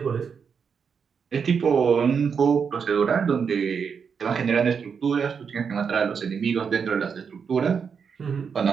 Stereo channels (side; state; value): left; quieter; 6.4 dB